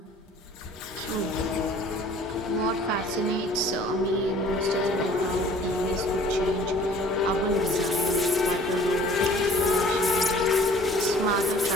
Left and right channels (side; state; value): both; normal; correlation 0.52